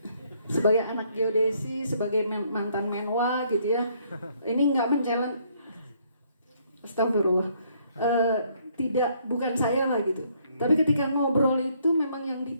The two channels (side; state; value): both; inverted; correlation -0.68